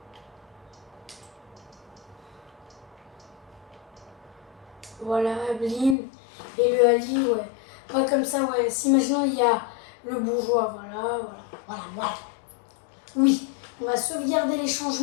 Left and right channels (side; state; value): right; drops out; at 6.0 s